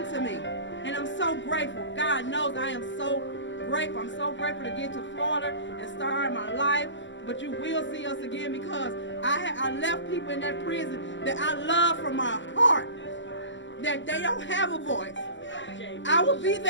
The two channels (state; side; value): late; right; 0.54 ms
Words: to me. And I'm so grateful. God knows I am so grateful. I'm so grateful to get to Florida and start my life. But you will see us again because I left people in that prison that I love from my heart. That they don't have a voice. I will be